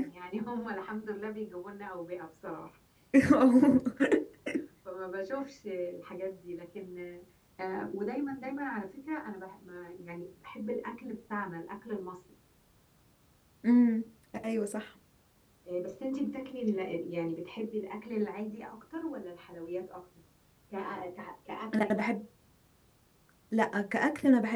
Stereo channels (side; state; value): both; identical; correlation 1.00